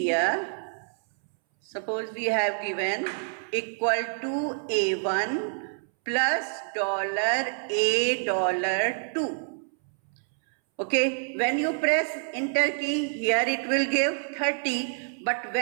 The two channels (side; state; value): left; silent; 60 dB below the other